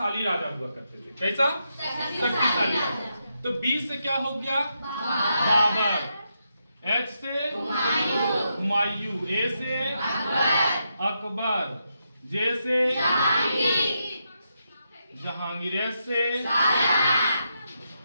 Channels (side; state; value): both; inverted; correlation -0.83